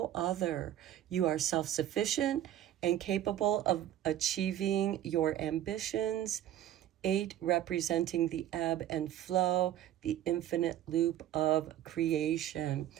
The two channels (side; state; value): left; quieter; 12.1 dB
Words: other. You are self-sufficient and capable of achieving your ambitions. 8 representing the ebb and flow, the infinite loop of creation.